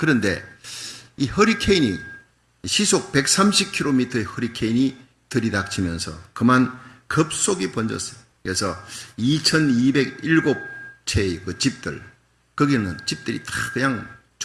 이 허리케인이 시속 130km의 허리케인이 들이닥치면서 그만 급속히 번졌어요. 그래서 2207채의 그 집들, 거기는 집들이 다 그냥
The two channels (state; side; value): identical; both; correlation 1.00